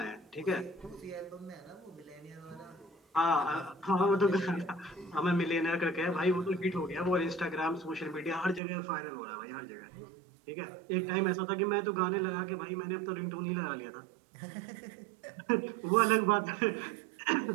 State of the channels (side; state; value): left; drops out; at 8.6 s